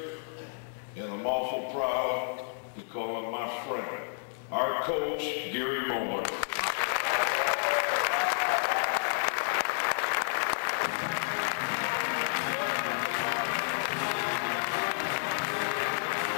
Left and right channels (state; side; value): silent; right; digital silence